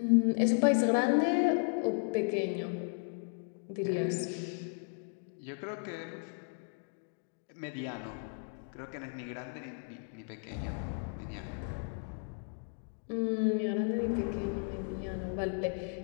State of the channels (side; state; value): right; silent; 54 dB below the other